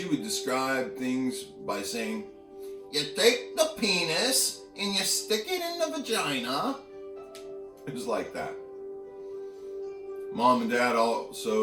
would describe things by saying, you take the penis and you stick it in the vagina. It was like that. Mom and Dad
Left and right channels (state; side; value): identical; both; correlation 1.00